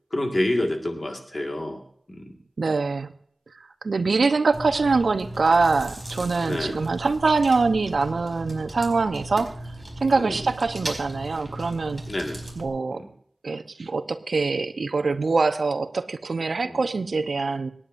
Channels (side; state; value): left; quieter; 3.1 dB